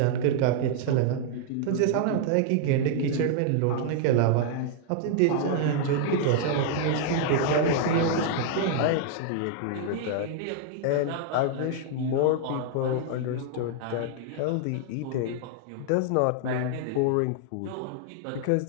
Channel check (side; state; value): both; different; correlation -0.01